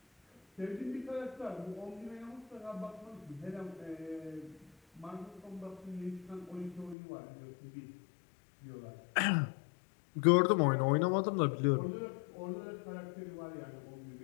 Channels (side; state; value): right; drops out; at 7.0 s